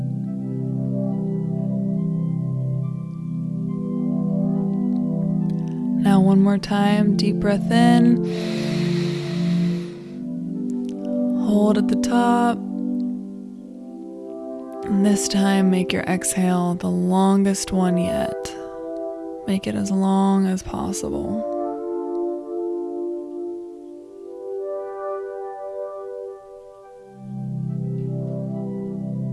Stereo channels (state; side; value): identical; both; correlation 1.00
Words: Now one more time, deep breath in. Hold at the top. And this time, make your exhale the longest one yet. Make it as long as possible.